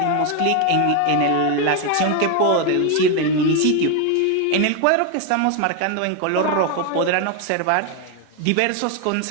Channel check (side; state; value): both; different; correlation 0.01